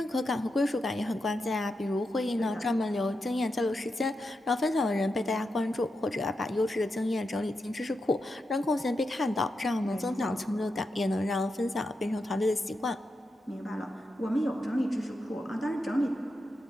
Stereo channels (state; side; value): normal; both; correlation 0.87